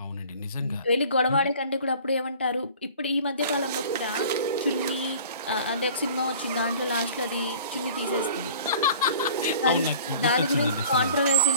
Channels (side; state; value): both; inverted; correlation -0.46